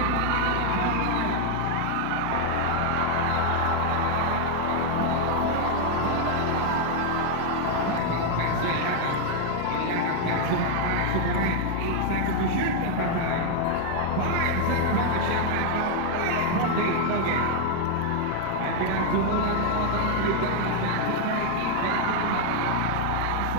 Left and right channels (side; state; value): both; different; correlation 0.00